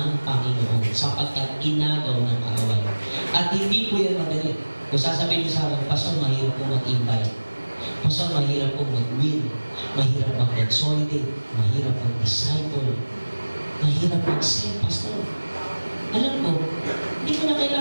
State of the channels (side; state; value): both; inverted; correlation -1.00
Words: Panginoon sapagkat inagaw ng kaaway. At hindi po yan madali. Kung sasabihin niyo sa akin, Pastor, mahirap po mag-invite. Pastor, mahirap po mag-win. Mahirap mag-consolidate. Mahirap mag-disciple. Mahirap mag-send, Pastor. Alam ko, hindi ko na